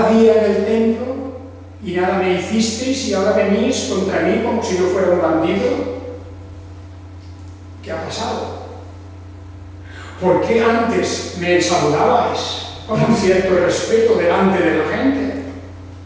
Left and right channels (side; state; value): both; identical; correlation 1.00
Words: día en el templo y nada me hicisteis y ahora venís contra mí como si yo fuera un bandido. ¿Qué ha pasado? ¿Por qué antes me saludabais con un cierto respeto delante de la gente?